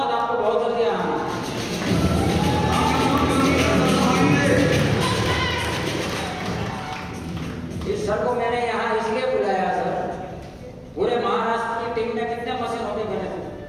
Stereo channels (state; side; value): identical; both; correlation 1.00